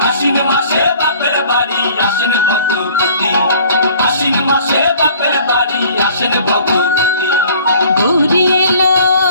আশ্বিন মাসে বাপের বাড়ি আসেন ভগবতী, আশ্বিন মাসে বাপের বাড়ি আসেন ভগবতী। গৌরী এলো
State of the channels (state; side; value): inverted; both; correlation -0.52